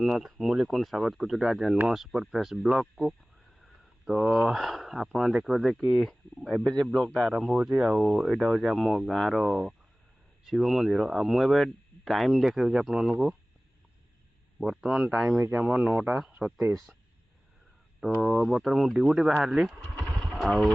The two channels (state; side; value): normal; both; correlation 0.98